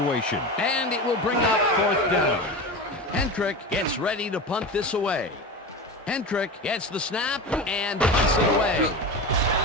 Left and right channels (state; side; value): normal; both; correlation 0.26